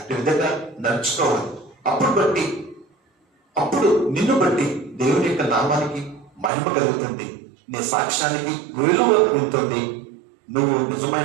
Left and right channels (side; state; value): left; drops out; at 6.5 s